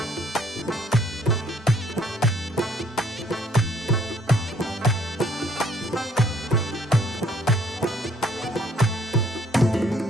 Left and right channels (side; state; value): both; normal; correlation 0.63